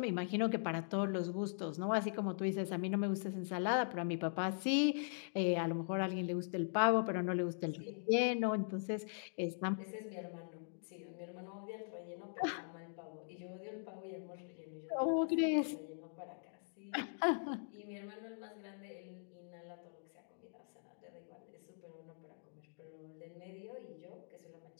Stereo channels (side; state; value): right; silent; digital silence